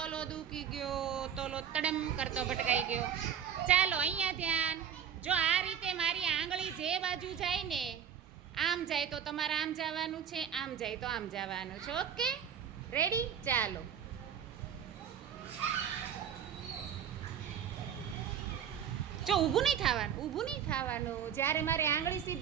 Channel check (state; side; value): quieter; left; 8.5 dB